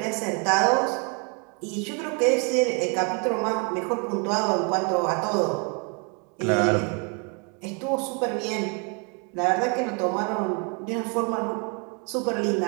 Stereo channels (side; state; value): left; quieter; 35.1 dB